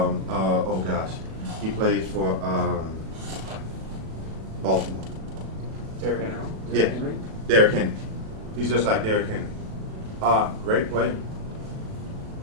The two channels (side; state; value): left; late; 37 ms